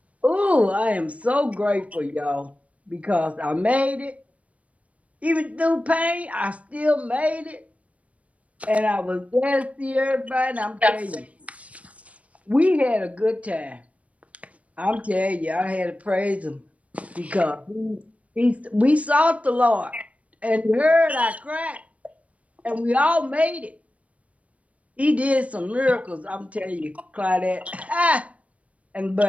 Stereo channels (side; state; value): left; late; 0.066 ms